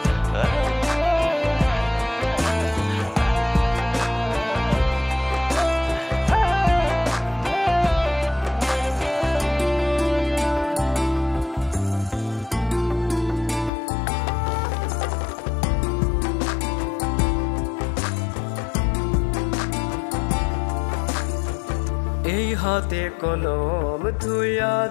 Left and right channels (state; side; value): drops out; right; at 13.7 s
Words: এই হাতে কলম ধুইয়া